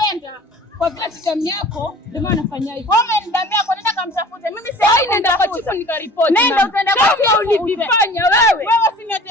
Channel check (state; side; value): normal; both; correlation 0.45